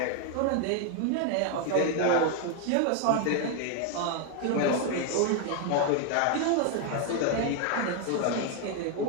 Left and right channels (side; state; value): both; different; correlation 0.01